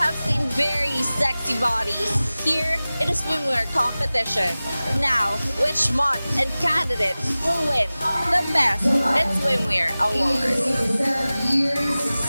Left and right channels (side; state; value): both; inverted; correlation -0.97